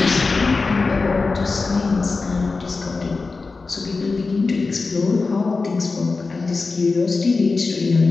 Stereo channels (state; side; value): quieter; right; 4.0 dB